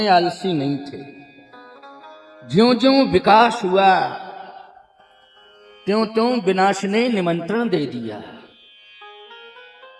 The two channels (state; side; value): identical; both; correlation 1.00